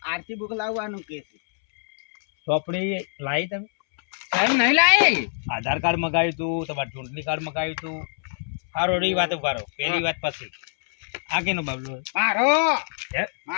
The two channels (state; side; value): silent; right; 62 dB below the other